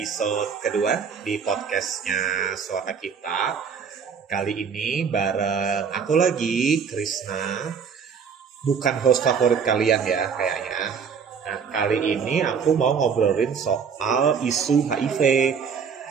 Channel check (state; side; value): quieter; left; 6.4 dB